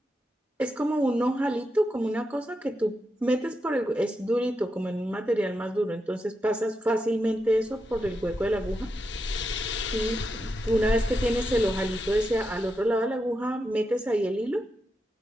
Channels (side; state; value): both; normal; correlation 0.86